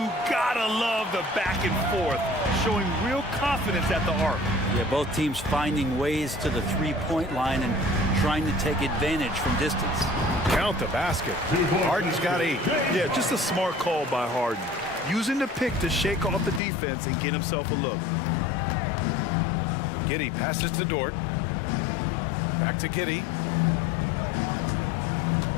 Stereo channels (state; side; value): drops out; right; at 16.6 s